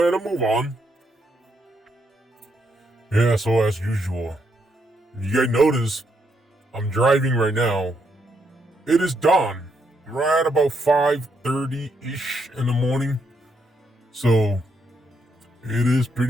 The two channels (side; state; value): both; normal; correlation 0.77